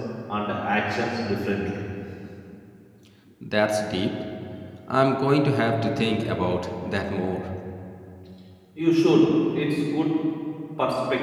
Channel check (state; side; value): identical; both; correlation 1.00